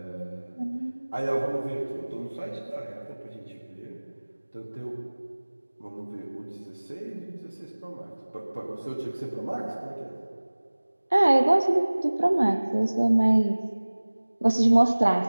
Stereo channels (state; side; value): inverted; both; correlation -1.00